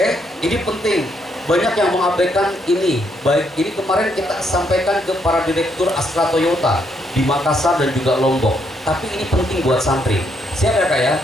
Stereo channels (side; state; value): both; normal; correlation 0.74